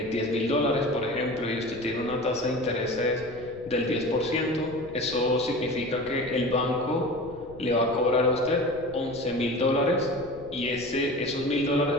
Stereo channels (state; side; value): noise; left; rumble, 19 dB below the sound